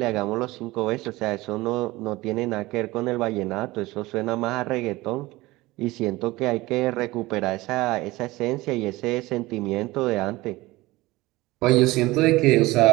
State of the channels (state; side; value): quieter; left; 19.8 dB